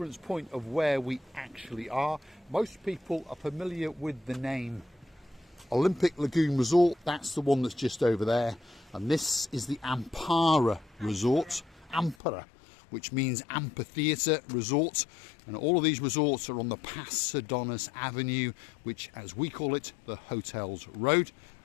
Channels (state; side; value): drops out; right; at 12.2 s